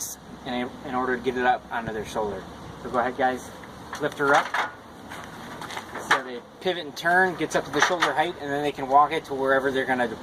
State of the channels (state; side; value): identical; both; correlation 1.00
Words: in order to get it up onto their shoulder. So go ahead, guys, lift her up. So they pivot and turn, gets up to the shoulder height, and then they can walk it to wherever they're going to